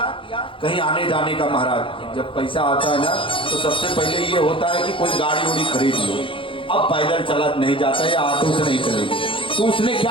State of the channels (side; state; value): right; late; 0.25 ms